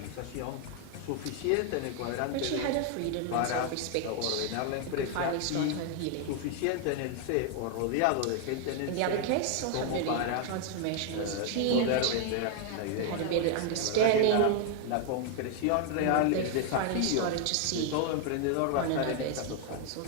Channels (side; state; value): both; different; correlation 0.00